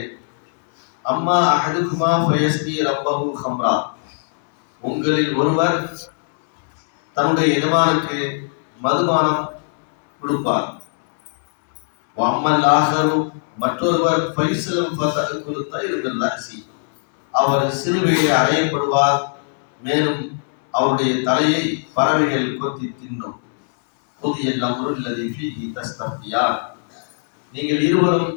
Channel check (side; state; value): right; silent; 66 dB below the other